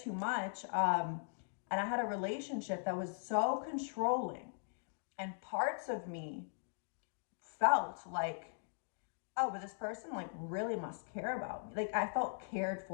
much. And I had a relationship that was so controlling, and parts of me felt like, oh, but this person like really must care about me. Like I felt cared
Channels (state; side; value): silent; right; digital silence